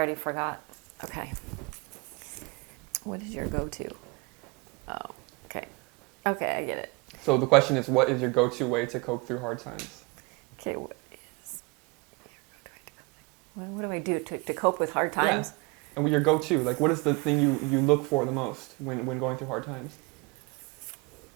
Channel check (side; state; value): left; quieter; 27.0 dB